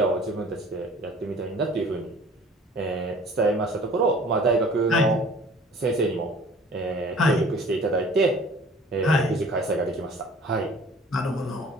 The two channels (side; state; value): both; normal; correlation 0.49